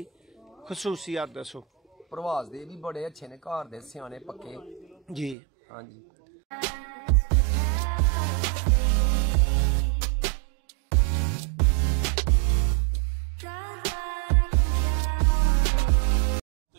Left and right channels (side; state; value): left; drops out; at 5.4 s